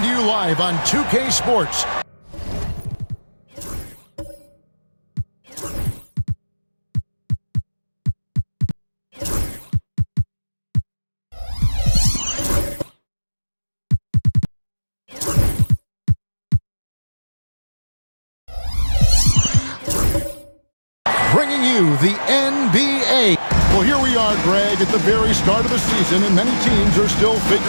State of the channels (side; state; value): both; inverted; correlation -1.00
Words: to you live on 2K Sports. Bringing you the NBA. Well, here we are, Greg, at the very start of the season, and many teams are still